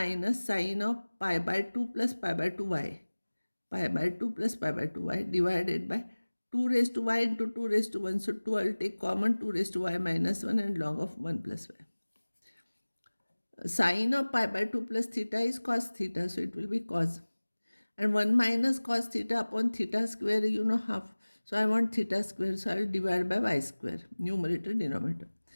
sine of pi by 2 plus pi by 2y. Pi by 2 plus pi by 2y divided by 2 raised to y into 2 raised to 1. So 2 I will take common, 2 raised to y minus 1 and log of 1 plus y. Sine of pi by 2 plus theta is cos theta. So it will be cos. And 1 minus cos theta upon theta square, you know, half. So I want theta square. So I will divide by y square. Numerator, denominator.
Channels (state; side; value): inverted; both; correlation -1.00